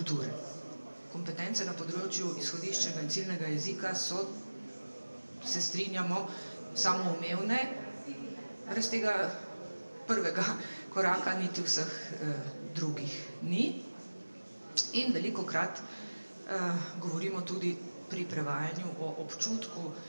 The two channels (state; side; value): inverted; both; correlation -1.00